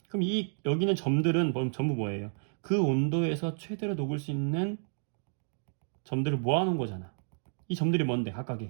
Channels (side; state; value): left; silent; digital silence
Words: 그럼 여기는 점들은 전부 뭐예요? 그 온도에서 최대로 녹을 수 있는 점들을 모아놓은 거잖아. 이 점들이 뭔데?